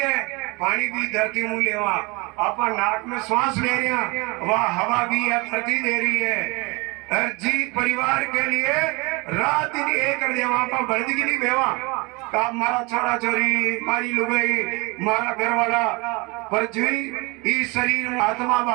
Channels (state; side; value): quieter; left; 26.7 dB